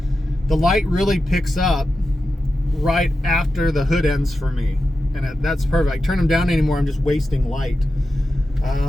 the light really picks up right after the hood ends for me, and that's perfect. I turn them down anymore. I'm just wasting light.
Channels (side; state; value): both; normal; correlation 0.91